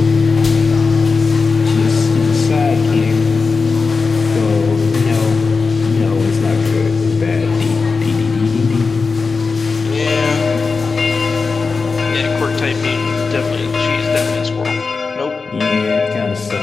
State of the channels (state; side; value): quieter; right; 4.5 dB